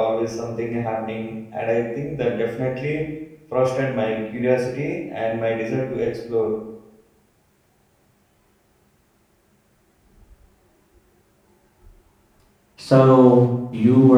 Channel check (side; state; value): both; identical; correlation 1.00